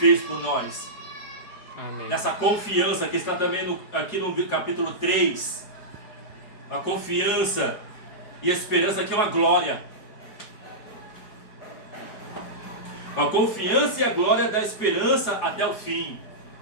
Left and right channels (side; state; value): right; late; 4.8 ms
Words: por nós. Amém. Nessa confiança que está também aqui no capítulo 3, a confiança e a esperança que é uma glória. A confiança e a glória da esperança até o fim.